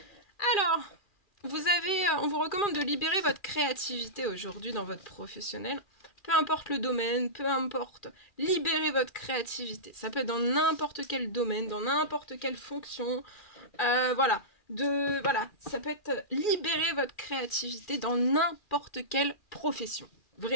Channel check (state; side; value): late; right; 2.4 ms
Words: Alors, on vous recommande de libérer votre créativité aujourd'hui dans votre professionnel. Peu importe le domaine, peu importe, libérez votre créativité. Ça peut être dans n'importe quel domaine, dans n'importe quelle fonction. Voilà. Voilà, ça peut être libérer votre créativité dans n'importe quelle profession.